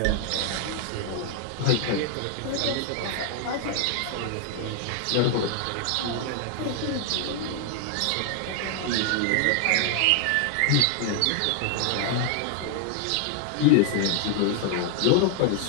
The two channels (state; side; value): different; both; correlation 0.00